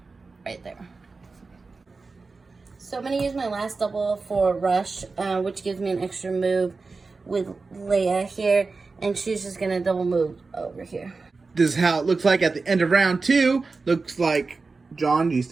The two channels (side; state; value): left; quieter; 4.1 dB